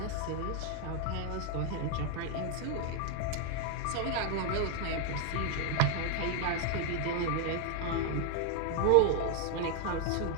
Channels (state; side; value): different; both; correlation 0.00